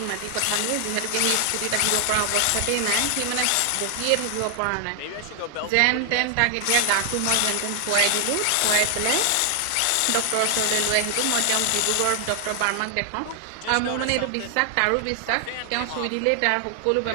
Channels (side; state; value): both; different; correlation 0.00